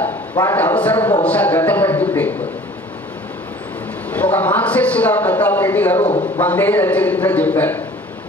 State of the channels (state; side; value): normal; both; correlation 0.48